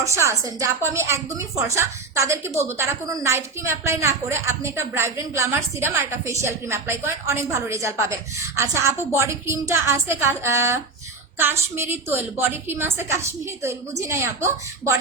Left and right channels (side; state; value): left; quieter; 4.0 dB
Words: আছেন, যে আপু আমি একদমই ফর্সা, তাদেরকে বলবো তারা কোনো নাইট ক্রিম অ্যাপ্লাই না করে আপনি একটা ব্রাইব্রেন্ট গ্লামার সিরাম আর একটা ফেসিয়াল ক্রিম অ্যাপ্লাই করেন, অনেক ভালো রেজাল্ট পাবেন। আচ্ছা আপু, বডি ক্রিমটা আছে কাশ্মীরি তৈল, বডি ক্রিম আছে কাশ্মীরি তৈল, বুঝি নাই আপু।